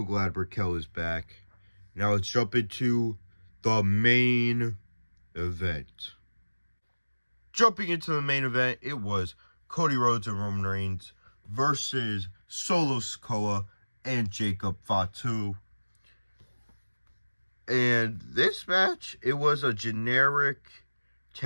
glad Raquel is back. Now let's jump into the main event. Jumping into the main event, it was Cody Rhodes and Roman Reigns versus Solo Sikoa and Jacob Fatu. And this match, it was a generic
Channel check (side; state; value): both; inverted; correlation -1.00